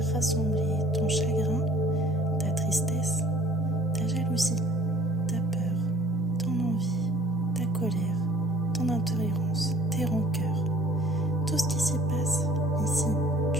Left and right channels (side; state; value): both; normal; correlation 0.54